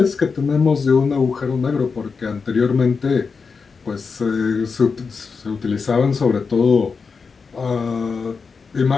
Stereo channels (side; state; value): right; quieter; 5.1 dB